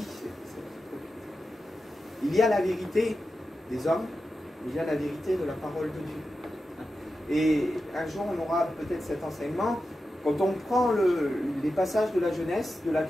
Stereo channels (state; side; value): normal; both; correlation 0.91